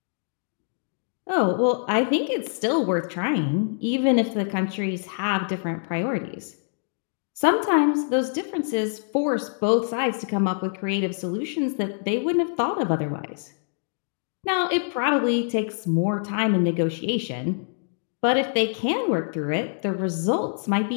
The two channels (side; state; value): right; silent; digital silence